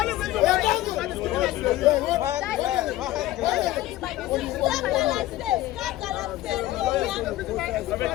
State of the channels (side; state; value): right; quieter; 15.7 dB